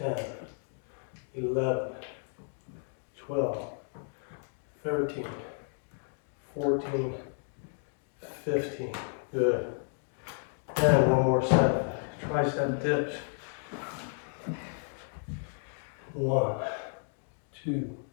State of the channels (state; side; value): silent; right; 56 dB below the other